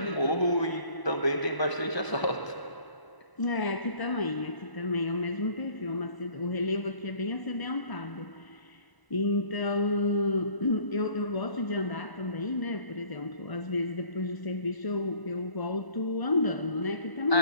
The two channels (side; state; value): right; late; 1.0 ms